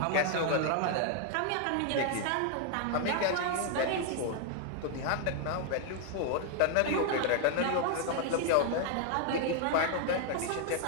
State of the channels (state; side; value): different; both; correlation 0.00